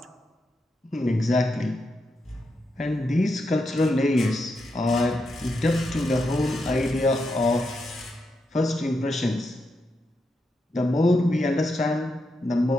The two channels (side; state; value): both; normal; correlation 0.84